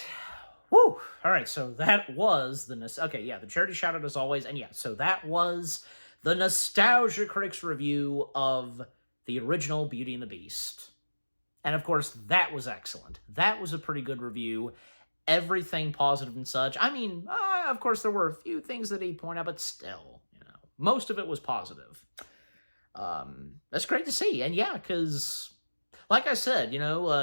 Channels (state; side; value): inverted; both; correlation -1.00